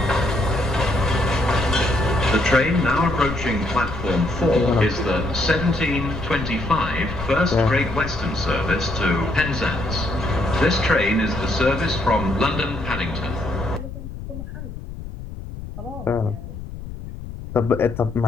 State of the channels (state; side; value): noise; left; rumble, 10 dB below the sound